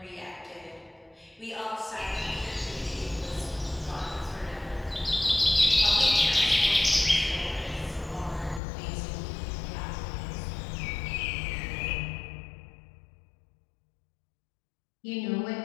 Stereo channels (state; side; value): drops out; right; at 8.6 s